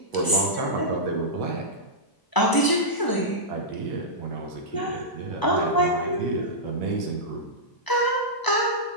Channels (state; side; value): late; right; 1.0 ms